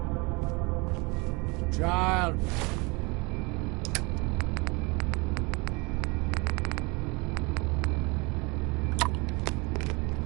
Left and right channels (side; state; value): left; quieter; 27.7 dB